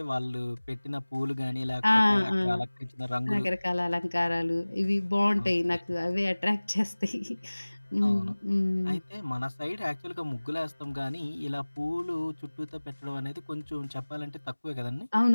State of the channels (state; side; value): inverted; both; correlation -1.00